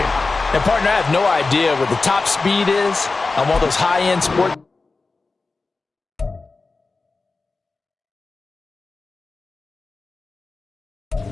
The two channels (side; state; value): right; quieter; 3.8 dB